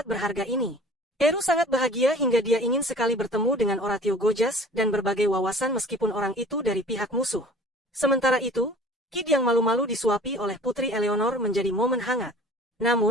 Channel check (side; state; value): both; normal; correlation 0.45